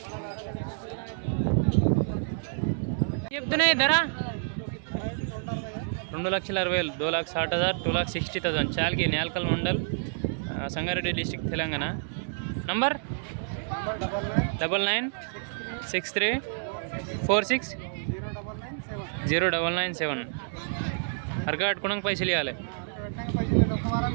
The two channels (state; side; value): silent; left; digital silence